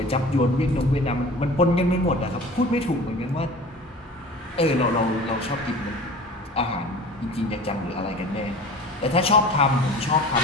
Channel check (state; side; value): normal; both; correlation 0.40